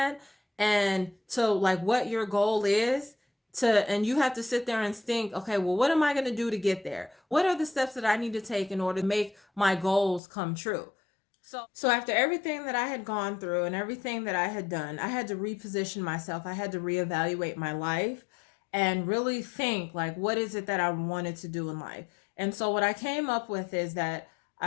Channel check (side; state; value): right; drops out; at 10.2 s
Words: and to like what your goal is, and you have to sit there and think, okay, well, what am I going to do to get there? What are the steps that I need to take in order to make my goals come true? So after everything that I had gone through and everything that I had done, I had to reposition myself. I had to reevaluate my life and really think, like, what is it that I wanted to do in life? And so what I came up with is that